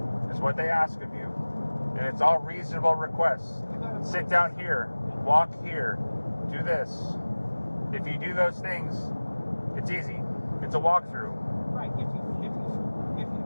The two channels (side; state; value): both; inverted; correlation -1.00